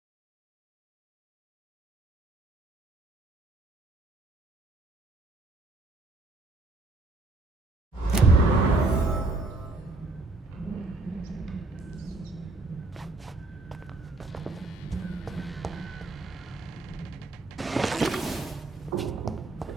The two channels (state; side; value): quieter; left; 3.1 dB